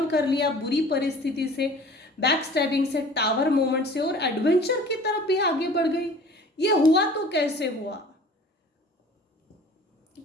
कर लिया बुरी परिस्थिति से, बैक स्टैबिंग से, टावर मोमेंट से, और एडवेंचर की तरफ भी आगे बढ़ गई। ये हुआ तो कैसे हुआ?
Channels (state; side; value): normal; both; correlation 0.46